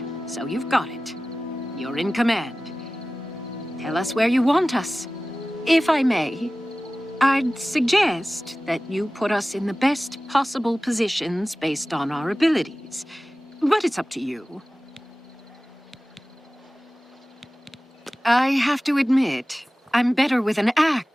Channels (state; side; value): normal; both; correlation 0.97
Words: so you've got it. You're in command. Tell us where you want us. If I may, I'd suggest that you put us in the best possible positions based on our abilities. But it's up to you. I have to admit, I'm better with an